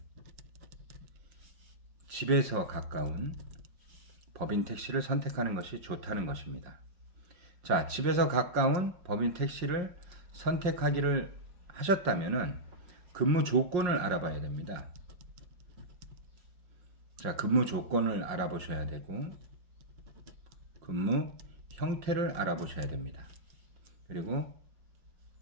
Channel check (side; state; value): left; late; 5.6 ms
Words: 집에서 가까운 법인 택시를 선택하는 것이 좋다는 것입니다. 자, 집에서 가까운 법인 택시를 선택하기를 하셨다면 근무 조건을 알아봐야 됩니다. 자, 근무 조건을 알아보셔야 되고 근무 형태를 알아보셔야 됩니다. 그리고